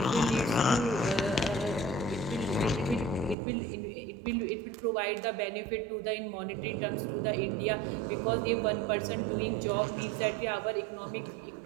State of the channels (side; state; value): left; drops out; at 3.4 s